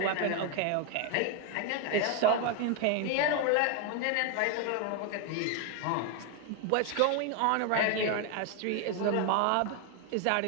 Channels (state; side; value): different; both; correlation 0.01